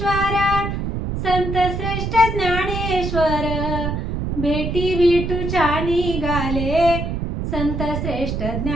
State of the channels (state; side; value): noise; right; rumble, 3 dB below the sound